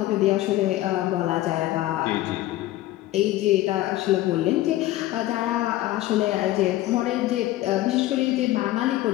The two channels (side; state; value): right; quieter; 15.8 dB